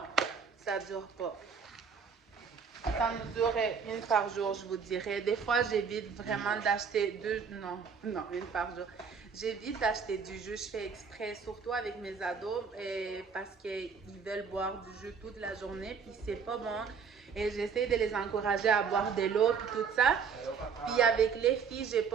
Ça dure pas. Ça me dure une par jour, je vous dirais. Des fois, j'évite vraiment d'acheter une par jour. J'évite d'acheter du jus, je fais exprès, surtout avec mes ados, parce qu'ils veulent boire du jus toute la journée, puis c'est pas bon. Et j'essaie de les encourager à boire de l'eau, puis tout ça. Puis avec les filles, j'ai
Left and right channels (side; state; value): left; quieter; 6.1 dB